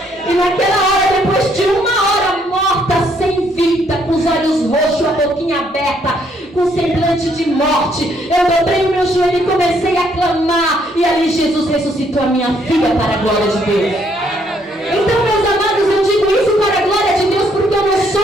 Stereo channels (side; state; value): both; normal; correlation 0.69